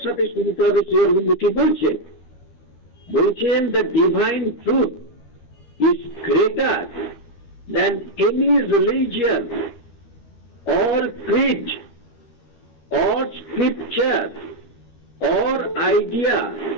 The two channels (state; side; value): late; right; 13 ms